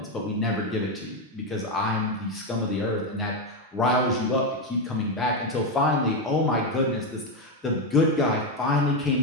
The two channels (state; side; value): normal; both; correlation 0.08